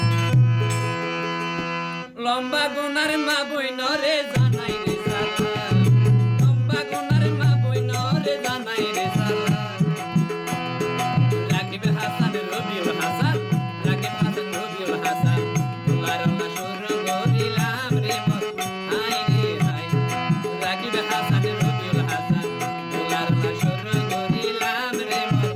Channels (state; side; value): identical; both; correlation 1.00